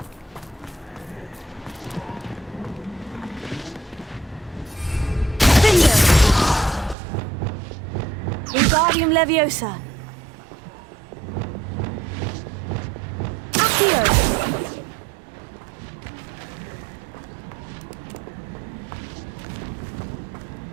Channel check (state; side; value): drops out; left; at 7.0 s